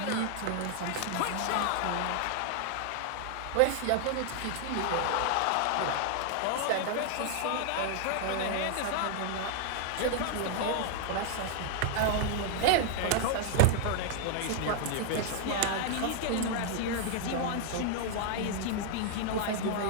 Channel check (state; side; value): different; both; correlation 0.00